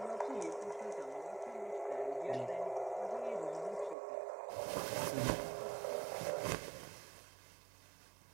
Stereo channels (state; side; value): drops out; left; at 4.0 s